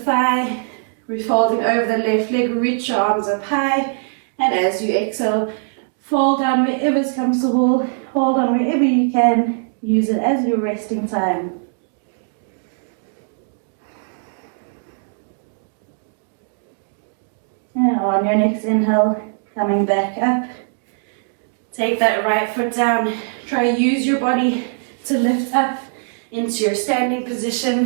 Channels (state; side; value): silent; left; digital silence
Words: We're folding over the left leg. Reach your arms up high. And as you exhale, fold down wherever is comfortable. Hold on wherever you can. Use it as your resting time. And on your next inhale, coming back up. Take that right foot down. Try to use your body to lift up into your standing